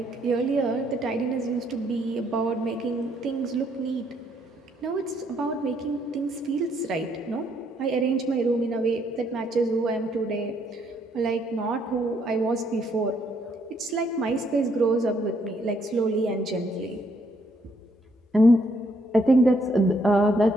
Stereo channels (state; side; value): normal; both; correlation 0.71